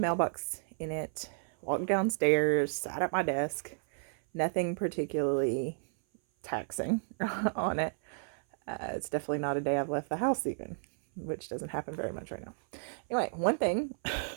in it, walked downstairs, sat at my desk. Nothing particularly taxing on it. It's definitely not a day I've left the house even, which doesn't happen very much right now. Anyway, one thing,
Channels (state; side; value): silent; left; 56 dB below the other